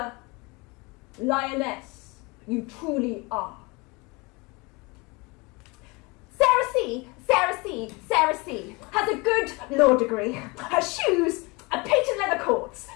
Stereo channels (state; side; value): quieter; right; 26.7 dB